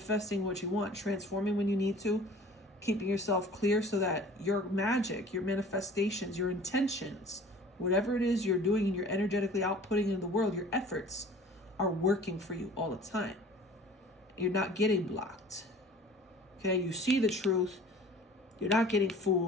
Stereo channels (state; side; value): normal; both; correlation 0.46